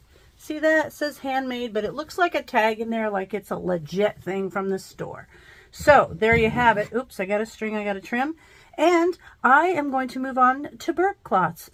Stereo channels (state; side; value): identical; both; correlation 1.00